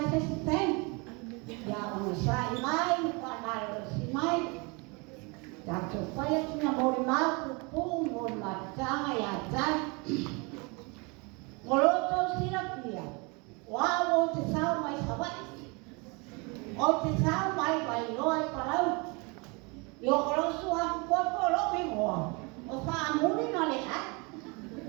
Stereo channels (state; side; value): quieter; left; 29.5 dB